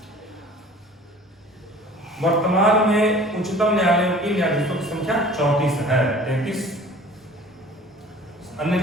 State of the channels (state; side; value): normal; both; correlation 0.47